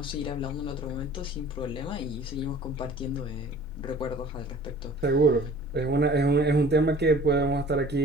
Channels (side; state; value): both; normal; correlation 0.48